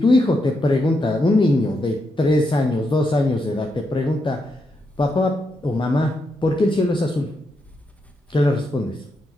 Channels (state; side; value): normal; both; correlation 0.82